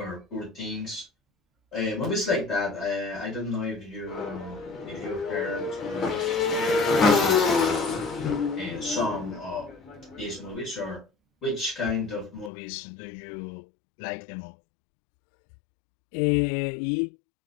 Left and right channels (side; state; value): right; drops out; at 12.5 s